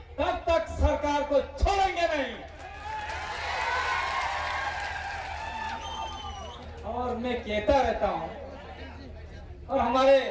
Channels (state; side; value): identical; both; correlation 1.00